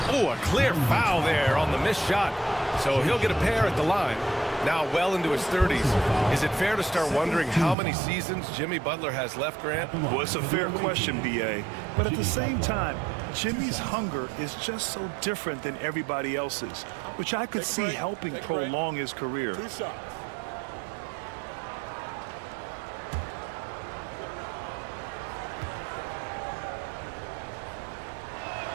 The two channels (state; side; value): drops out; left; at 7.8 s